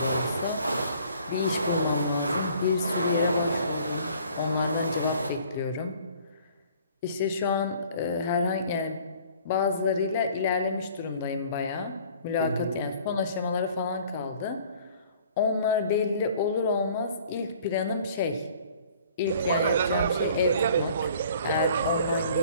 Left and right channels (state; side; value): inverted; both; correlation -0.53